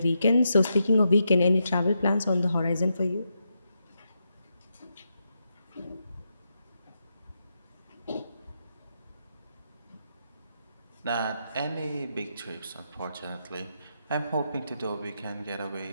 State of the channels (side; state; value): both; inverted; correlation -0.84